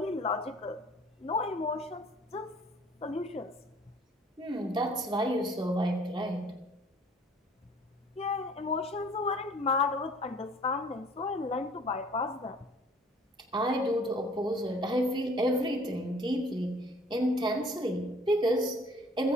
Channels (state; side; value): normal; both; correlation 0.53